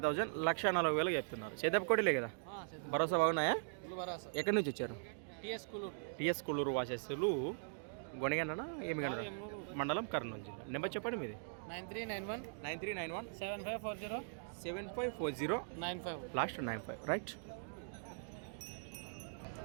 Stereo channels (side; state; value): left; silent; digital silence